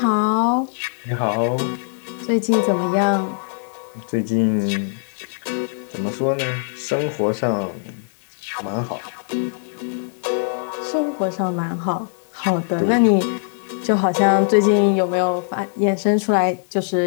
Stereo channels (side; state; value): right; silent; digital silence